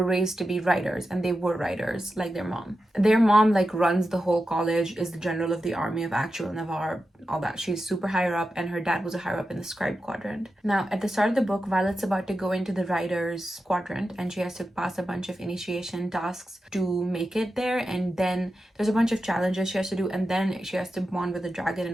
raised to be writers, and they were writers like their mom. Their mom runs the whole college, is the general of the army of actual Navarre, all that. She's super higher up, and her dad was a higher up in the scribe quadrant. Now, at the start of the book, Violet's about to go into the writers quadrant, and she has to pass a bunch of initiation tasks to make it there, and then there's a bunch of challenges she has to do, and then she has to bond with a dragon,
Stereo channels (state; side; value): normal; both; correlation 0.90